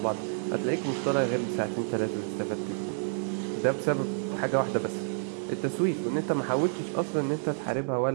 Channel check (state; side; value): silent; left; digital silence